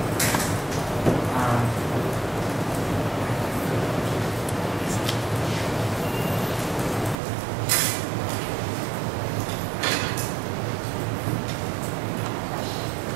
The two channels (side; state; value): left; drops out; at 7.2 s